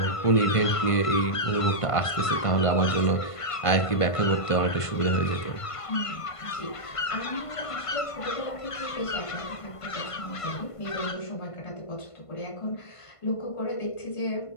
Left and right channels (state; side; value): late; right; 1.5 ms